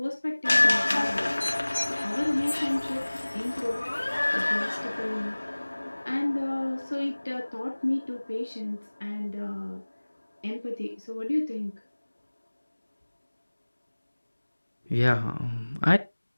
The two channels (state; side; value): inverted; both; correlation -1.00